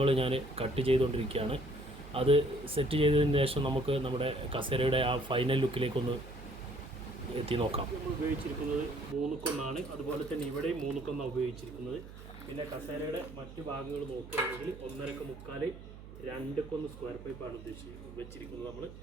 ഞാൻ കട്ട് ചെയ്തുകൊണ്ടിരിക്കുകയാണ്. അത് സെറ്റ് ചെയ്തതിന് ശേഷം നമുക്ക് നമ്മുടെ കസേരയുടെ ആ ഫൈനൽ ലുക്കിലേക്കൊന്ന് എത്തി നോക്കാം. നമ്മൾ ഉപയോഗിച്ചിരിക്കുന്നത് 3 കൊന്നാണ്, അതുപോലെ തന്നെ ഇവിടെയും 3 കൊന്നാണ് ഉപയോഗിച്ചിരിക്കുന്നത്. പിന്നെ കസേരയുടെ മറ്റു ഭാഗങ്ങൾ നോക്കുകയാണെങ്കിൽ 1.5 മുക്കാൽ 2 കൊന്ന് സ്ക്വയർ പൈപ്പാണ് വെച്ചിരിക്കുന്നത്. നമ്മൾ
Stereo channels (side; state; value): right; noise; hum, 15 dB below the sound